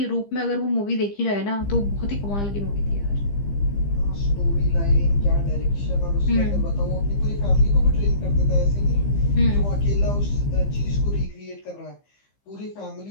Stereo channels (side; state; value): right; late; 15 ms